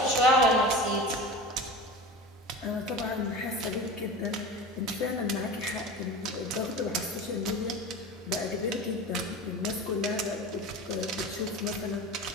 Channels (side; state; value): both; normal; correlation 0.32